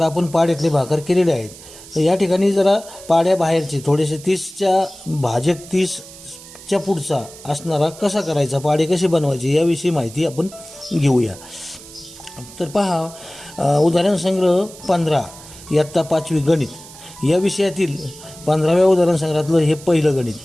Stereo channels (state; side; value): noise; right; hiss, 18 dB below the sound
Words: आपण पाड्यातले भाकर केलेले आहेत। तर या ठिकाणी जरा पाड्या बाहेरचे थोडेसे 30च्या भाजक 30च्या पुढचा असणारा कसा करायचा, पाडे कसे बनवायचे याविषयी माहिती आपण घेऊया। तर पहा, उदाहरण संग्रह 15 इयत्ता 5वी गणित या विषयातील 15व्या उदाहरण संग्रहातलं हे पहिलं गणित